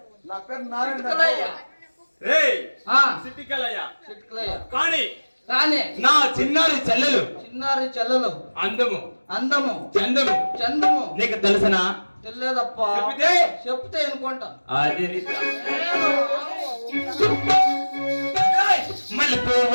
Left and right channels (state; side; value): inverted; both; correlation -1.00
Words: నా పేరు నారాయణ. చిట్కలయ్య. రేయ్ ఆ, సిటికలయ్య. చిట్కలయ్య. కానీ కానీ నా చిన్నారి చెల్లెలు చిన్నారి చెల్లెలు అందము అందము చందము చందము నీకు తెలుసనా? తెలియదప్ప. చెబితే? చెప్తే అనుకుంటా. అది